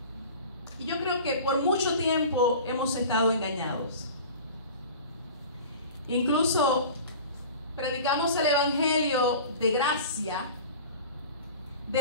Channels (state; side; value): inverted; both; correlation -0.38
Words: Y yo creo que por mucho tiempo hemos estado engañados. Incluso predicamos el evangelio de gracia